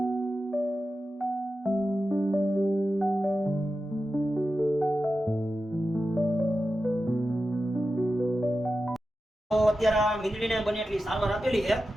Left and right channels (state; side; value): normal; both; correlation 0.92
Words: અત્યારે મીંદડીને બને એટલી સારવાર આપેલી છે